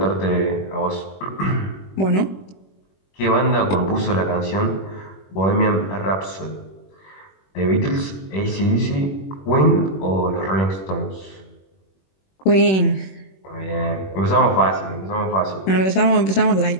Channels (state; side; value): late; right; 21 ms